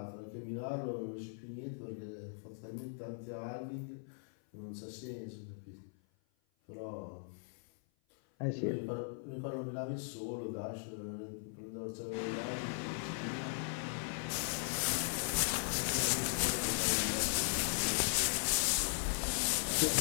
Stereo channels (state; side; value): silent; right; 52 dB below the other